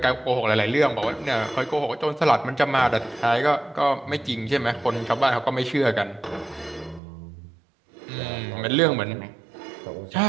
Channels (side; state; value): left; drops out; at 7.0 s